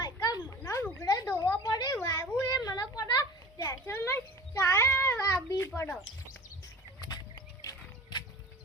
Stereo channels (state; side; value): normal; both; correlation 0.39